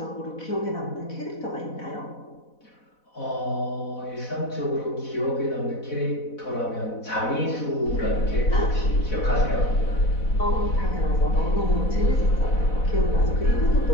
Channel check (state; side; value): late; right; 4.1 ms